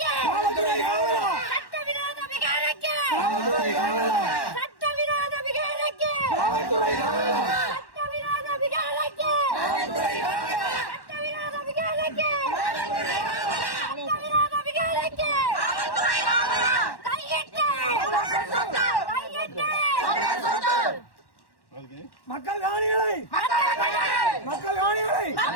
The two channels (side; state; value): right; late; 1.1 ms